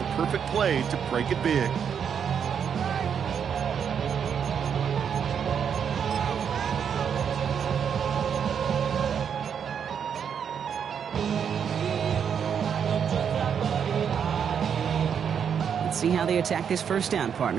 a perfect play to break it big. Let's see how they attack this 1st down,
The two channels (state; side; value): quieter; left; 7.6 dB